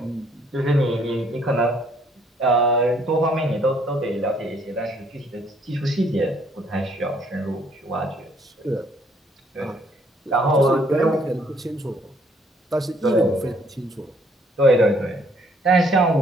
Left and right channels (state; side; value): normal; both; correlation 0.65